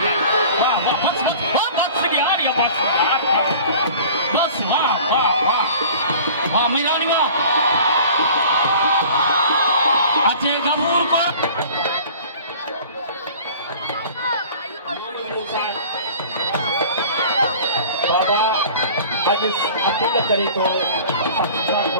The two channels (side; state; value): both; inverted; correlation -0.44